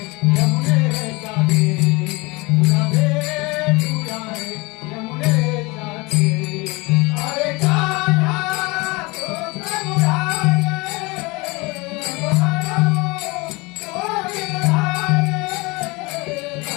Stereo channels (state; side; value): quieter; right; 25.0 dB